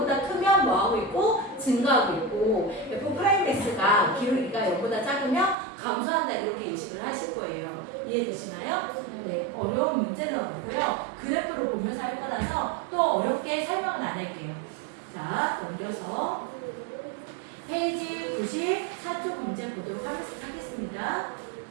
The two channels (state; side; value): drops out; left; at 5.6 s